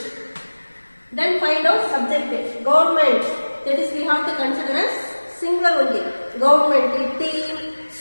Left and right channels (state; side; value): inverted; both; correlation -1.00